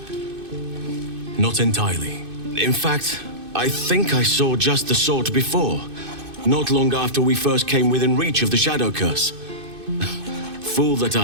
Not entirely. In fact, I think I saw just the sort before, not long after we first came within reach of the Shadow Curse. Fool that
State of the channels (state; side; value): late; left; 2.6 ms